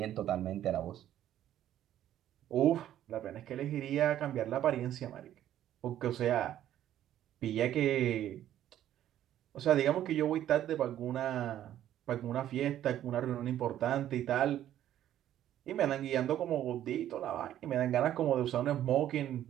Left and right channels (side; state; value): left; quieter; 11.8 dB